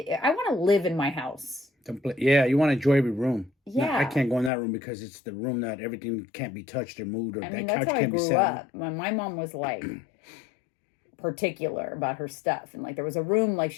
want to live in my house. Yeah, you want to enjoy every room. Yeah. No, I can't go in that room because it's the room that everything can't be touched or moved, or I that mean, couch that's how I can't be grew sat up. My mom was like particular about her stuff. And like there was a room, like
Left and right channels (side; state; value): right; drops out; at 4.5 s